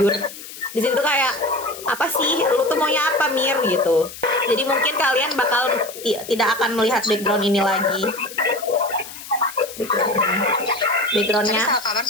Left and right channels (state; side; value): noise; left; hiss, 14 dB below the sound